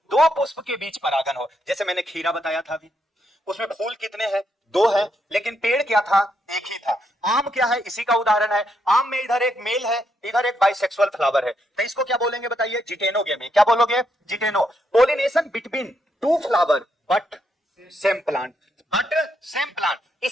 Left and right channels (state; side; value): normal; both; correlation 0.78